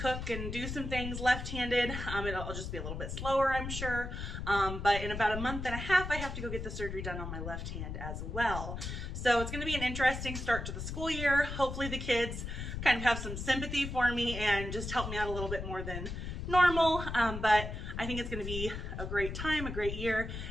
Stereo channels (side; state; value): left; noise; rumble, 6 dB below the sound